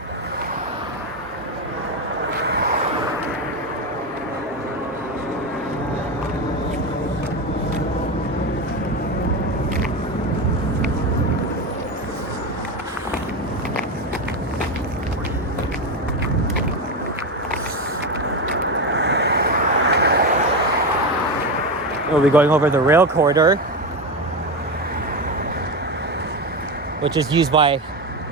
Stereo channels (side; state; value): both; normal; correlation 0.16